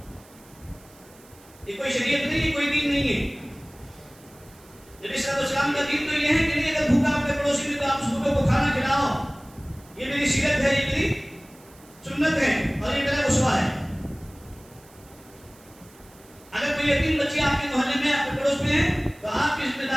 یہ کوئی شریعت نہیں ہے، کوئی دین نہیں ہے۔ علیہ السلام کا دین تو یہ ہے کہ نہیں اگر بھوکا آپ کے پڑوسی میں تو آپ اس بھوکے کو کھانا کھلاؤ. یہ میری سیرت ہے, یہ میری سنت ہے اور یہ میرا اسوہ ہے. اگر کوئی یتیم بچی آپ کے محلے میں آپ کے پڑوس میں ہے تو آپ کی ذمہ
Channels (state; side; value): noise; right; hiss, 26 dB below the sound